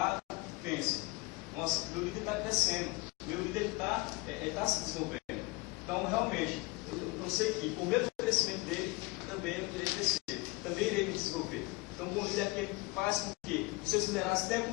pensem: nossa, meu líder está crescendo, meu líder está se desenvolvendo. Então, realmente, eu sei que por meio do crescimento dele, também eu irei crescer, também irei me desenvolver. Então, o bom líder é aquele que faz com que os seus liderados tenham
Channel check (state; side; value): quieter; right; 24.4 dB